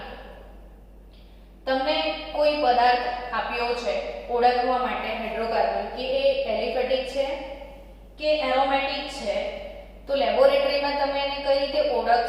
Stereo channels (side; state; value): both; identical; correlation 1.00